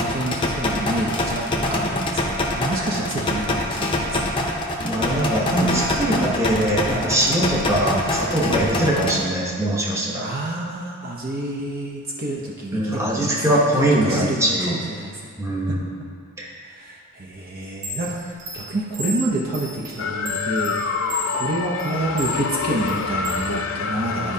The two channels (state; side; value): normal; both; correlation 0.38